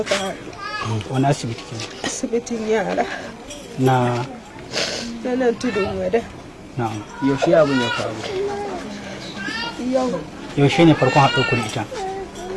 haɗu. Wani asibiti ke? Asibitin yara. Na Na nan tudun wada. na'am. Yaushe abin ya faru? Yau Yaushe ne farkon haɗo ku da ita?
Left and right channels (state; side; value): identical; both; correlation 1.00